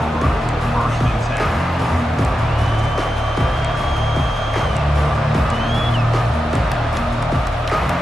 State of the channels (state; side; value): normal; both; correlation 0.89